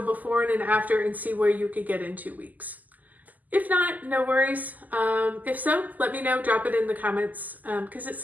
before and an after and see where you could get in 2 weeks? If not, no worries. If so, let me know, drop it in the comments, because it's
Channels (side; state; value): left; late; 0.081 ms